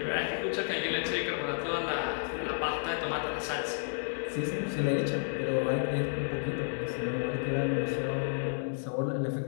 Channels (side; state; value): right; silent; 57 dB below the other